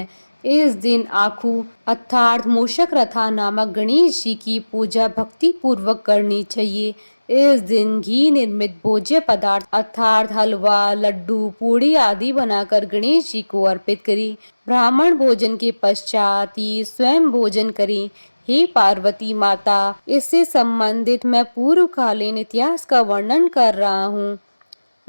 इस दिन आखू अर्थात मूषक रथा नामक गणेश जी की पूजा भक्ति पूर्वक करनी चाहिए। इस दिन घी निर्मित भोज्य पदार्थ अर्थात हलवा, लड्डू, पूड़ी आदि बनाकर गणेश जी को अर्पित करें। ब्राह्मण भोजन के पश्चात ही स्वयं भोजन करें। हे पार्वती माता, इससे संबंधित मैं पूर्वकालीन इतिहास का वर्णन कर रहा हूँ।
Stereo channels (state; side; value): inverted; both; correlation -1.00